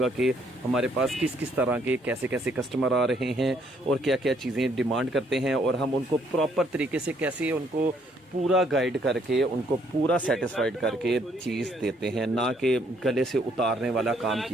कि हमारे पास किस किस तरह के कैसे कैसे कस्टमर आ रहे हैं और क्या क्या चीज़ें डिमांड करते हैं, और हम उनको प्रॉपर तरीके से कैसे उनको पूरा गाइड करके उनको पूरा सेटिस्फाइड करके चीज़ देते हैं, ना कि गले से उतारने वाला काम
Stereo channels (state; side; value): normal; both; correlation 0.68